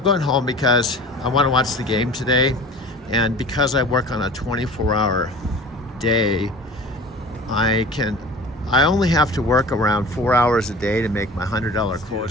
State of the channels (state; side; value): normal; both; correlation 0.40